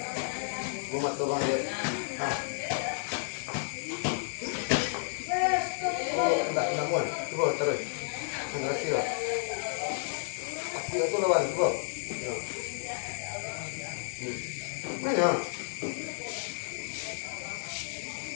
Gua matu bang dia. Ah. Oh, enggak muat. Coba terus. Enggak sih lah. Aku itu lawan coba. Ya. Mana?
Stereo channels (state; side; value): silent; right; 57 dB below the other